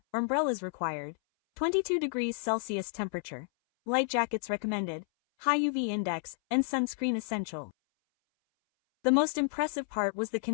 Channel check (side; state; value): right; silent; 57 dB below the other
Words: umbrellas required, 22 degrees Celsius temperature, light jackets recommended, high UV index, and sunscreen essential. The most impressive part was the